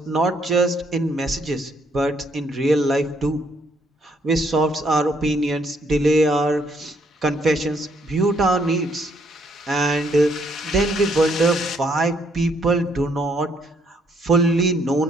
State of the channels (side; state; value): both; normal; correlation 0.70